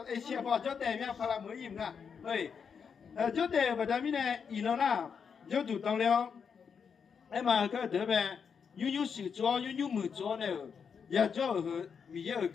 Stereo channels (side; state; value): right; quieter; 6.5 dB